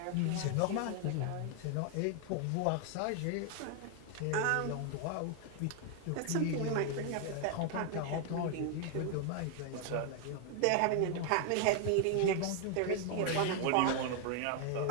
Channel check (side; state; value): both; different; correlation 0.00